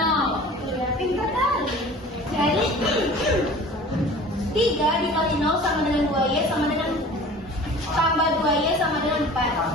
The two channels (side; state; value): both; normal; correlation 0.43